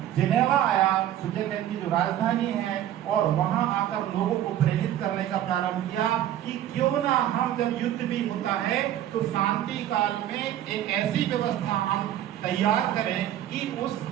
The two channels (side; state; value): left; quieter; 11.9 dB